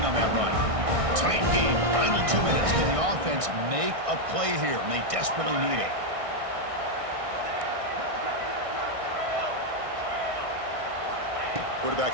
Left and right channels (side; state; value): left; late; 1.6 ms